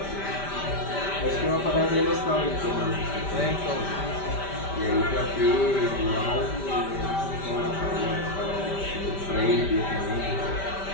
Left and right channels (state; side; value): late; right; 5.1 ms